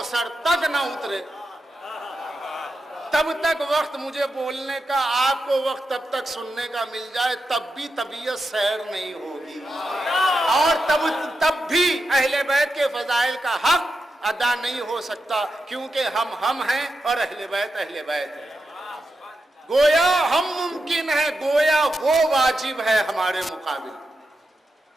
تک نہ اترے، تب تک وقت مجھے بولنے کا، آپ کو وقت تب تک سننے کا مل جائے، تب بھی طبیعت سیر نہیں ہوگی، اور تب بھی اہل بیت کے فضائل کا حق ادا نہیں ہو سکتا، کیونکہ ہم ہیں اور اہل بیت ہے۔ گویا ہم ممکن ہے، گویا وہ واجب ہے ہمارے مقابل،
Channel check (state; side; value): normal; both; correlation 0.88